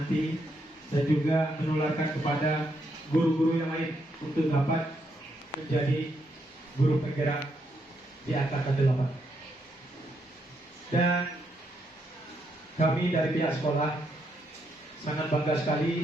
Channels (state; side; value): normal; both; correlation 0.78